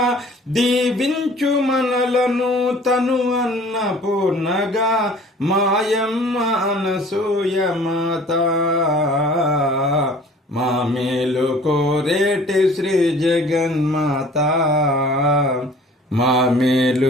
దీవించు మనలను తను అన్నపూర్ణగా మాయమ్మ అనసూయ మాత మా మేలు కోరేటి శ్రీ జగన్మాత మా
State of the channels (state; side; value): normal; both; correlation 0.49